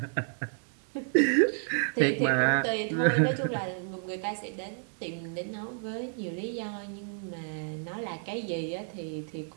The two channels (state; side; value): silent; left; digital silence